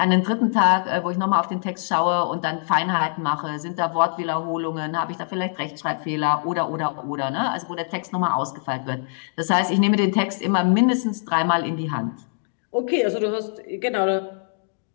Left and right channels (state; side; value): silent; right; digital silence